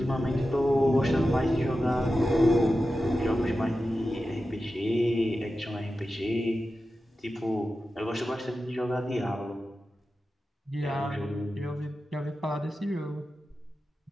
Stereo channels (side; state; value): both; normal; correlation 0.92